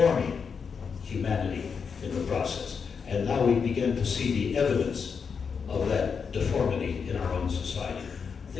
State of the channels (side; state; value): right; quieter; 6.0 dB